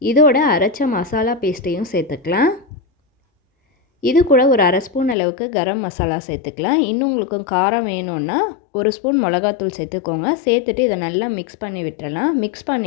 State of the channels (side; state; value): right; drops out; at 5.2 s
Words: இதோட அரைச்ச மசாலா பேஸ்ட்டையும் சேர்த்துக்கலாம். இது கூட ஒரு 1/2 ஸ்பூன் அளவுக்கு கரம் மசாலா சேர்த்துக்கலாம். இன்னும் உங்களுக்கு காரம் வேணும்னா 1 ஸ்பூன் மிளகாத்தூள் சேர்த்துக்கோங்க. சேர்த்துட்டு இதை நல்லா மிக்ஸ் பண்ணி விட்டுறலாம். மிக்ஸ்